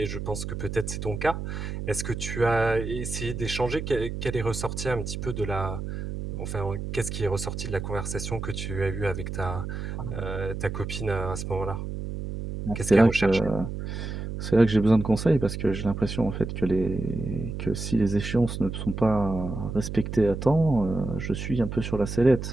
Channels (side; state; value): right; noise; hum, 6 dB below the sound